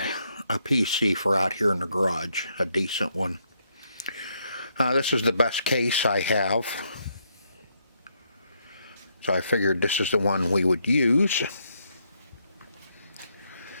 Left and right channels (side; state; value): both; inverted; correlation -0.76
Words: PC for out here in the garage, a decent one. This is the best case I have. So I figured this is the one we would use.